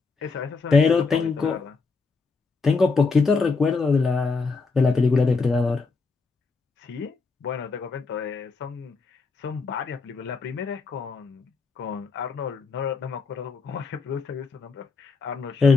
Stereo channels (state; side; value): quieter; right; 4.4 dB